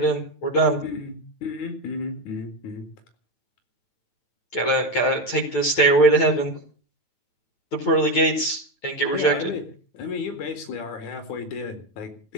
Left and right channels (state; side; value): late; right; 9.2 ms